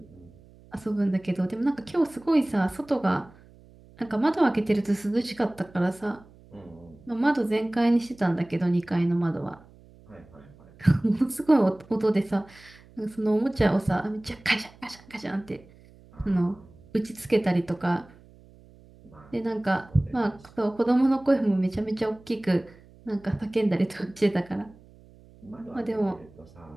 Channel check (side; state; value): right; noise; hum, 25 dB below the sound